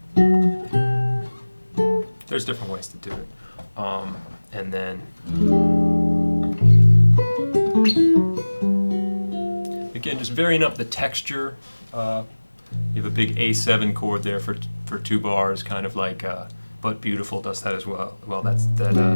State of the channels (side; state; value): both; inverted; correlation -1.00